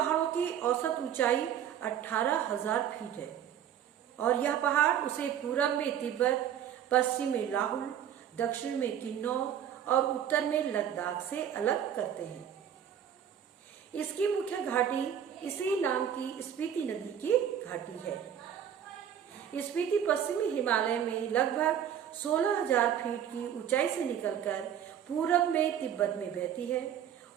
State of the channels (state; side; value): quieter; left; 9.5 dB